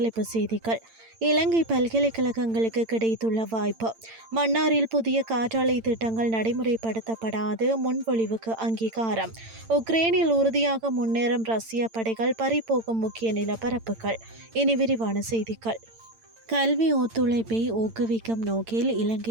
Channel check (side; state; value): left; late; 8.9 ms